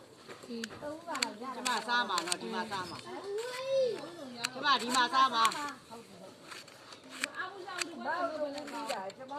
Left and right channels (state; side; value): identical; both; correlation 1.00